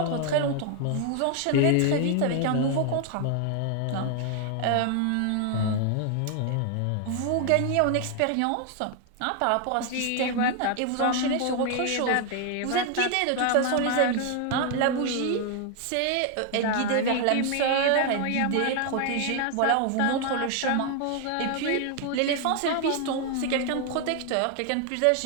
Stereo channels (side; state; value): both; different; correlation 0.00